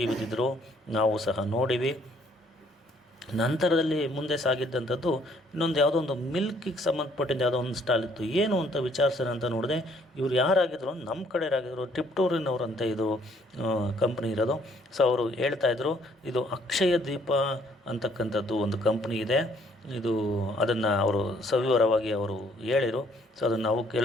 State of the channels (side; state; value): both; normal; correlation 0.64